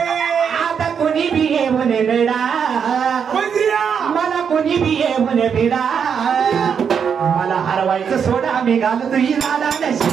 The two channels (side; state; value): left; quieter; 7.1 dB